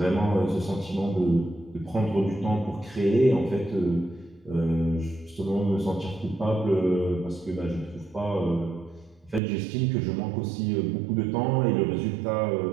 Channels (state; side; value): drops out; left; at 9.4 s